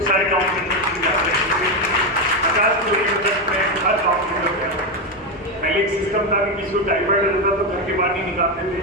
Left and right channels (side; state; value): both; normal; correlation 0.09